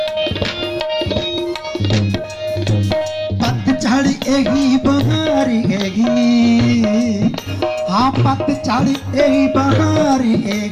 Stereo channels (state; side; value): identical; both; correlation 1.00